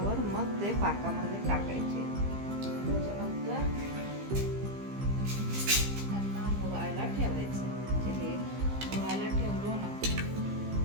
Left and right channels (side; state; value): left; late; 15 ms